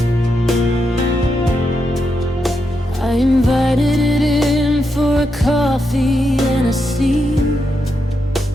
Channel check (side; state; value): both; normal; correlation 0.84